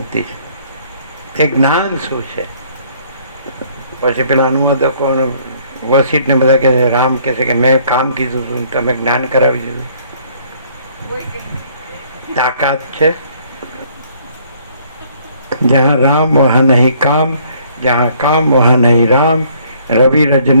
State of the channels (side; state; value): both; inverted; correlation -0.62